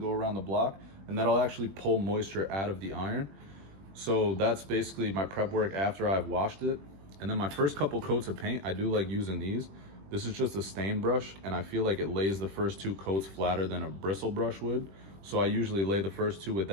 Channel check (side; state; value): left; late; 21 ms